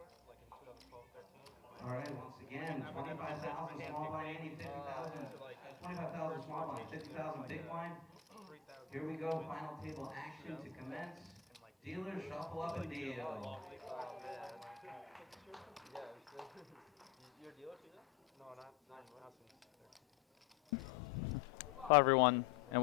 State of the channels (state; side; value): quieter; right; 8.4 dB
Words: like in 2012, 13. All right, once again, 25,000 small blind ante, 50,000, 25,000 small blind, 50,000 big blind. Here we go, final table action to commence. Dealers shuffle up and deal. You're a dealer too? No, not Hello everyone, and